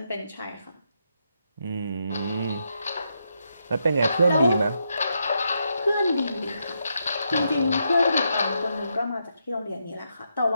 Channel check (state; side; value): inverted; both; correlation -0.81